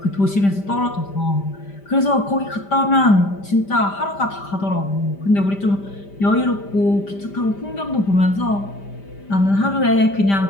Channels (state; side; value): late; right; 5.1 ms